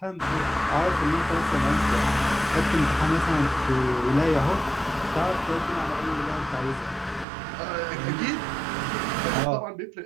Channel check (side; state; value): left; drops out; at 7.2 s